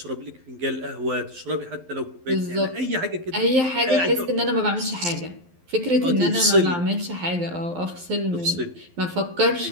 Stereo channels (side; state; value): left; late; 12 ms